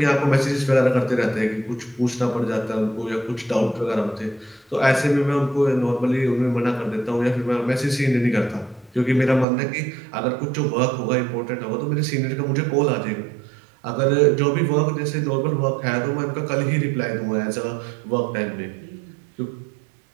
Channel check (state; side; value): drops out; left; at 9.5 s